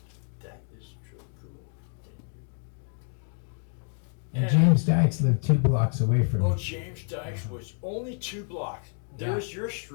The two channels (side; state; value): right; silent; 56 dB below the other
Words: That is truly cool. Thank you. And James Dykes lived 2 blocks away from Oh, me. James Dykes was only 2 blocks. There's your